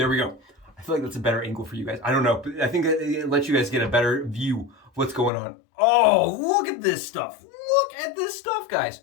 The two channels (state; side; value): drops out; right; at 5.3 s